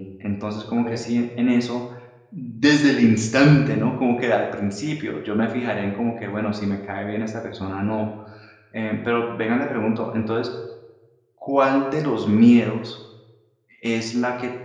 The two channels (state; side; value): identical; both; correlation 1.00